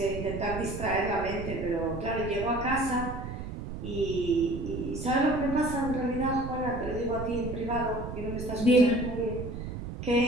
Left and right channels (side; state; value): right; noise; rumble, 7 dB below the sound